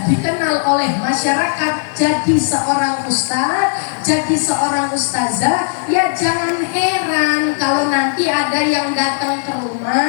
dikenal oleh masyarakat jadi seorang ustaz, jadi seorang ustazah, ya jangan heran kalau nanti ada yang datang ke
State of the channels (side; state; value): right; silent; digital silence